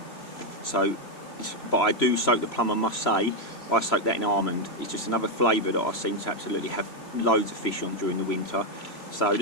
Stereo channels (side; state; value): right; late; 3.0 ms